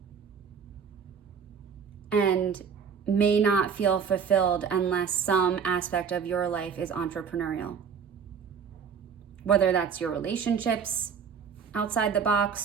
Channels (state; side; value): quieter; left; 6.7 dB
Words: and may not feel fulfilled unless some aspect of your life is entrepreneurial. Whether that's your relationships outside the